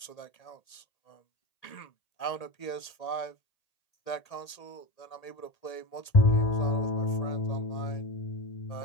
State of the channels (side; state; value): right; late; 1.8 ms